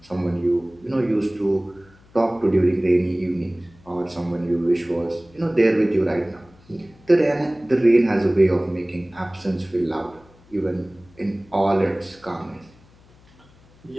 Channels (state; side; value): noise; left; hum, 28 dB below the sound